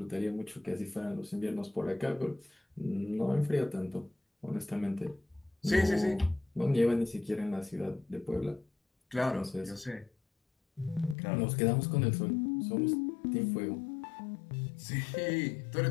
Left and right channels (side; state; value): right; drops out; at 11.2 s